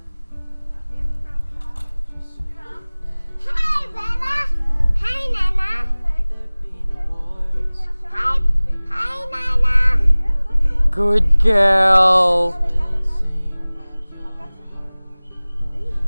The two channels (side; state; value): both; inverted; correlation -1.00